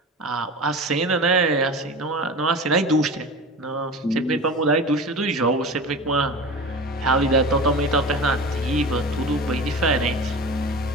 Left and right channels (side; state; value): both; normal; correlation 0.32